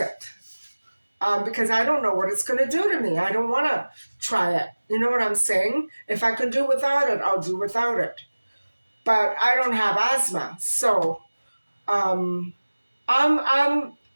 Because I don't know what it's going to do to me. I don't want to try it. You know what I'm saying? If I can do without it, I'll do without it. But I don't have asthma, so I'm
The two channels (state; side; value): inverted; both; correlation -1.00